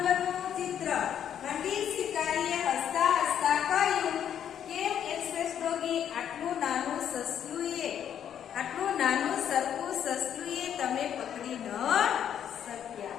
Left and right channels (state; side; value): quieter; right; 9.4 dB